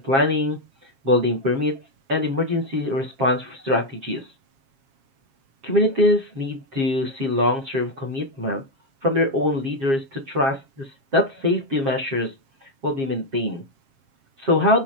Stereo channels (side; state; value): left; late; 7.4 ms